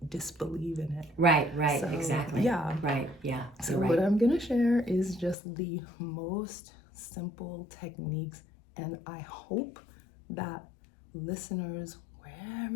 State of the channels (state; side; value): drops out; right; at 5.4 s